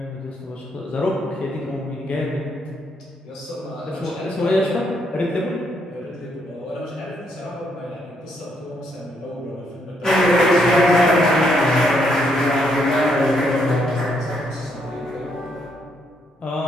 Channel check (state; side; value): normal; both; correlation 0.74